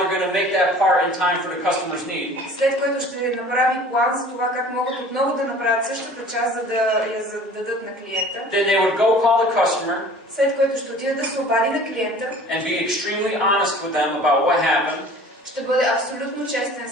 going to make that part in time for the customer's need. след което ще направи план за това как могат отново да направят същата част, за да я дадат на клиента. Then they would go call the customer След което ще отиде да се обади на клиента, and be extremely honest with them about what happened, ще бъде абсолютно честен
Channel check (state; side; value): normal; both; correlation 0.46